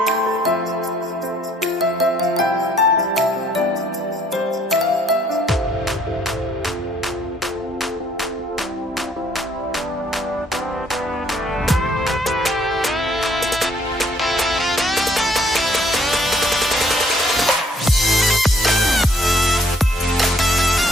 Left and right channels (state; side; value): normal; both; correlation 0.63